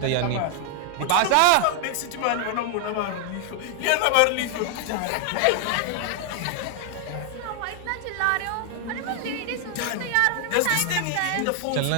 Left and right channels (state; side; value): different; both; correlation 0.00